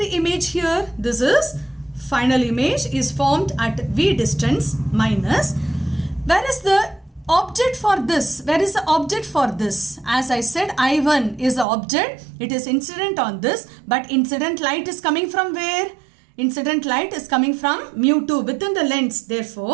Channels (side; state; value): left; drops out; at 11.7 s